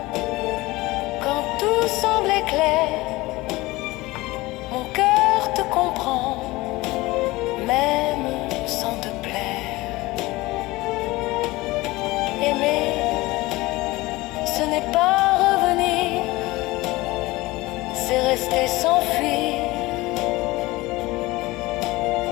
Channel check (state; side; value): quieter; right; 20.4 dB